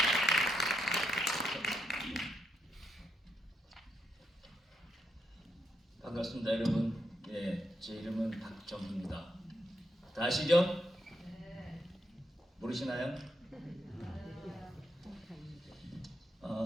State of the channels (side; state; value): both; normal; correlation 0.79